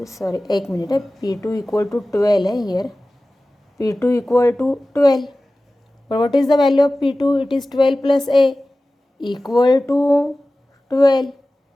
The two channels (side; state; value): both; normal; correlation 0.96